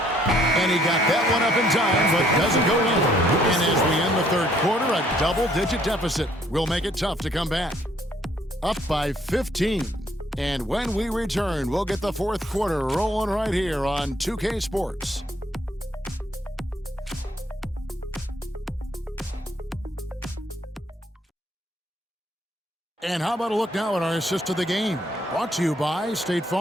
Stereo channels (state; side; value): normal; both; correlation 0.65